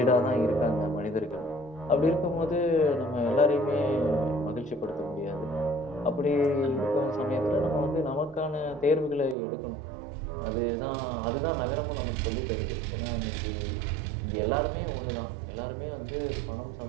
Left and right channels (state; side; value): drops out; left; at 9.3 s